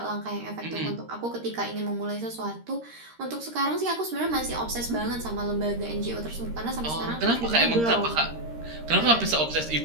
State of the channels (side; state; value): left; late; 13 ms